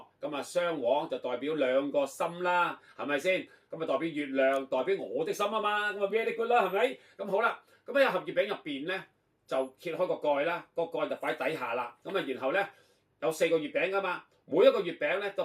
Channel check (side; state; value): both; identical; correlation 1.00